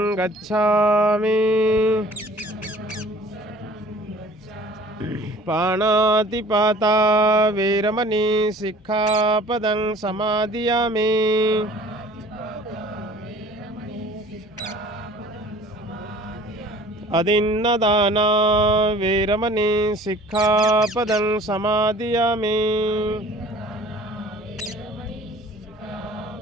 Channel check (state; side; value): normal; both; correlation 0.49